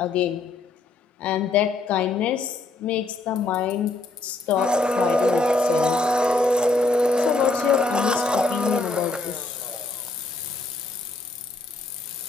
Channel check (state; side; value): quieter; right; 3.3 dB